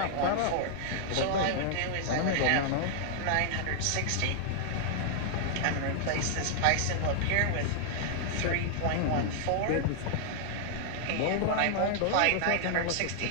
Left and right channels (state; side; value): different; both; correlation -0.01